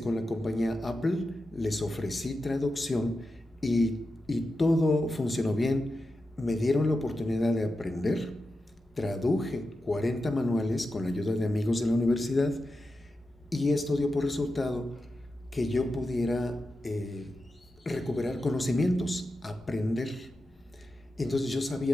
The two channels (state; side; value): normal; both; correlation 0.90